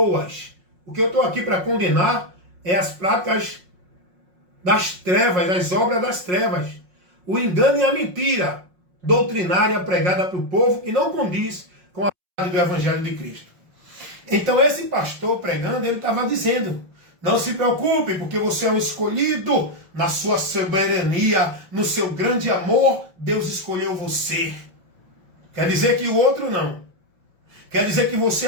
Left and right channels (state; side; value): late; left; 5.5 ms